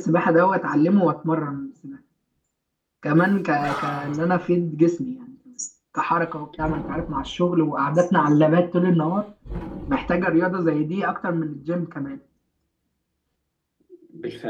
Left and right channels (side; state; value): both; identical; correlation 1.00